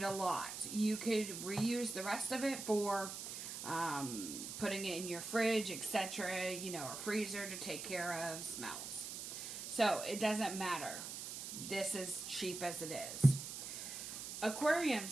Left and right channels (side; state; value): right; noise; hiss, 7 dB below the sound